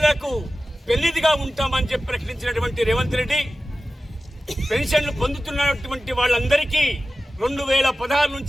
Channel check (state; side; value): normal; both; correlation 0.95